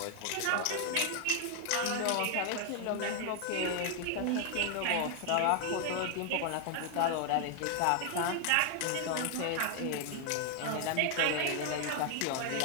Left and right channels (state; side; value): different; both; correlation 0.00